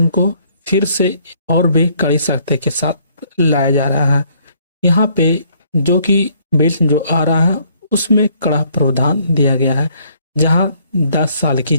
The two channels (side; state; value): both; inverted; correlation -0.65